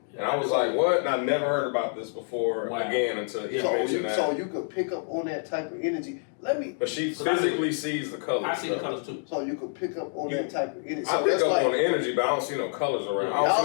And I was like, what? And I never heard about this before again until he mentioned that. So you could pick up on that type of energy. But she physically sees the colors. I see the colors too. So you could pick up on that type of energy. I So pick that's up like, on the energy, but I don't see no colors around.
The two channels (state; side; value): silent; right; 60 dB below the other